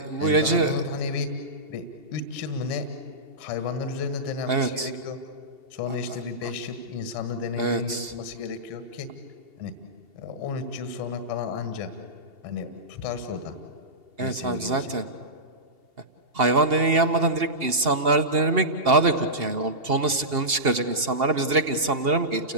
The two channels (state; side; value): late; left; 2.8 ms